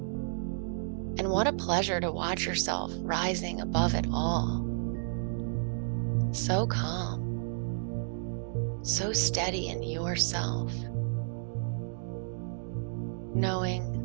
And what a pleasure to watch yourself rising above it all. So calm. So steady in yourself,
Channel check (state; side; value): silent; left; digital silence